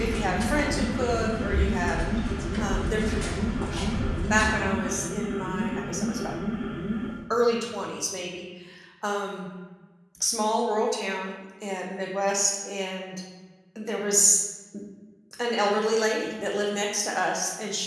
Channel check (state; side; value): identical; both; correlation 1.00